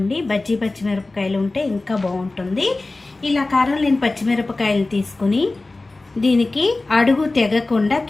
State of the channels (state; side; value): quieter; right; 3.2 dB